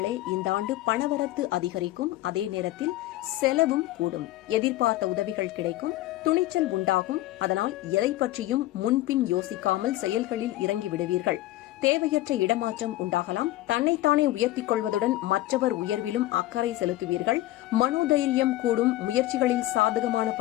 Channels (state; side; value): quieter; right; 16.2 dB